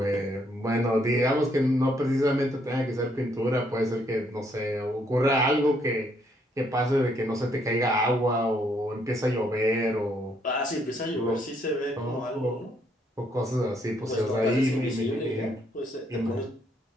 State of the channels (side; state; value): both; normal; correlation 0.71